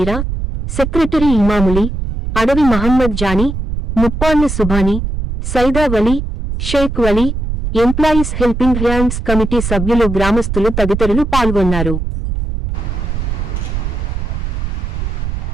secretary Imamuli, Adavi Mohammed Jani, Muppalla Subhani, Saida Vali, Sheikh Vali, employees helping hands committee సభ్యులు, గ్రామస్తులు తదితరులు పాల్గొన్నారు.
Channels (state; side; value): noise; right; rumble, 3 dB below the sound